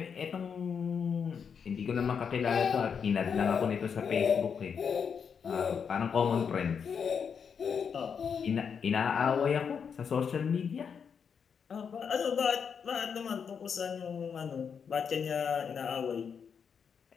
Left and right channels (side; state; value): right; quieter; 6.7 dB